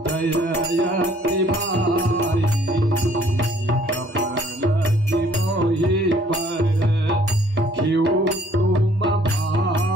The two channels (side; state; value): both; normal; correlation 0.60